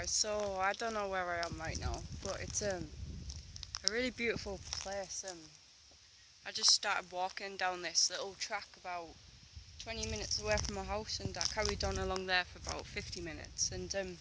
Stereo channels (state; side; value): identical; both; correlation 1.00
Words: so I don't know where I am right now, but it's a really beautiful place. I just started walking down this little track about 20 minutes away from my house, and I carried on along there for about 50 minutes, and